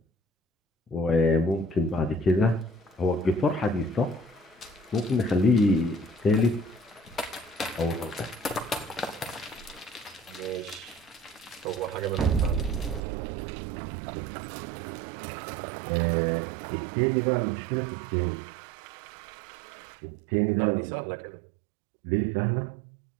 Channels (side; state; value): left; drops out; at 13.0 s